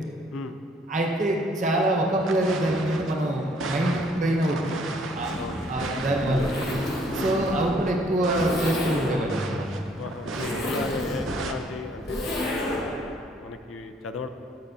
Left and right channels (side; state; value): both; normal; correlation 0.63